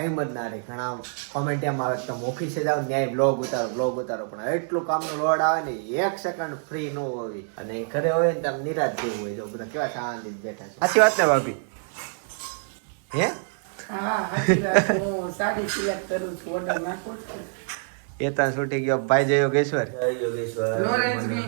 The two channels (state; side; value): silent; left; 61 dB below the other